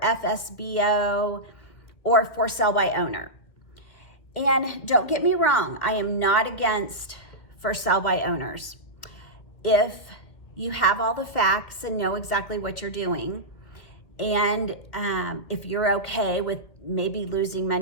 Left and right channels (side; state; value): right; late; 2.3 ms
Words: or for sale by owner. And don't get me wrong, I am not against for sale by owners. If you have all the facts and know exactly what you're doing, and if you're okay with maybe losing